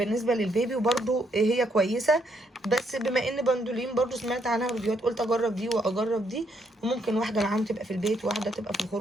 للبيبي، وبرضو هي كويسه. بس بما ان بندولين برضو سمعت عنها ريفيوهات قلت اجرب دي واجرب دي، وممكن واحده معاهم تبقى في البيت وواحده تبقى في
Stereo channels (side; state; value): both; normal; correlation 0.74